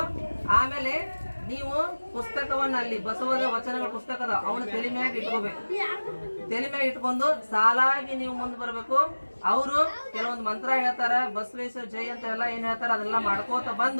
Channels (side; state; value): both; inverted; correlation -1.00